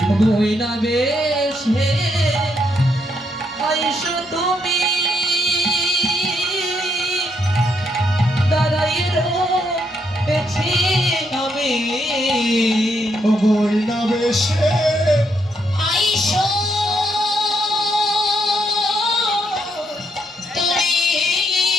বইনা বেশে আইসো তুমি দাঁড়াই রয়েছি আমি। ওই না বেশে আইসো তুমি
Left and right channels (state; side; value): normal; both; correlation 0.76